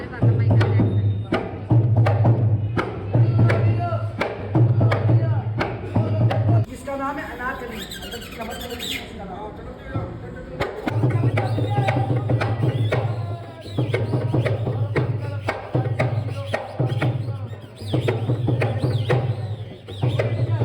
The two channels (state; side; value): identical; both; correlation 1.00